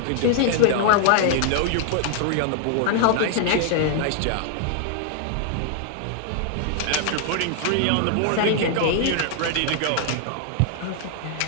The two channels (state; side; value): different; both; correlation 0.00